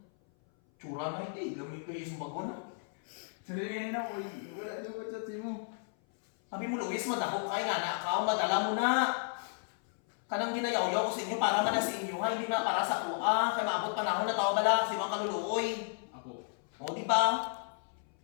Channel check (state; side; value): silent; right; 56 dB below the other